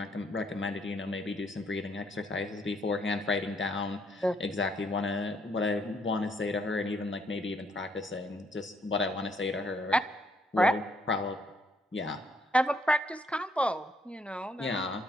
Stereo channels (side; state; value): both; normal; correlation 0.69